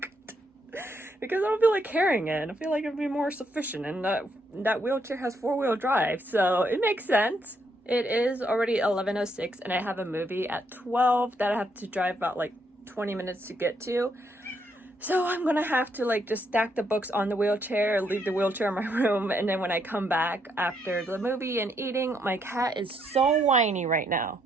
Because I don't feel like carrying it. I feel like it'd be more sufficient, and that wheelchair has 4-wheel drive, so it makes sense. It is already 11:06, and I have a movie at 12 that I have to drive about like 20 minutes to get to. So I'm gonna have to like just stack the books on the wheelchair, leave the wheelchair in my room, and then when I come back after the movie and eating, my cat is so whiny right now.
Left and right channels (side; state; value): both; normal; correlation 0.75